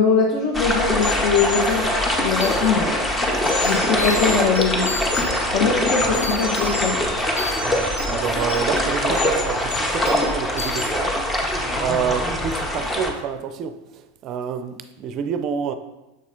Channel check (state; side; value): normal; both; correlation 0.34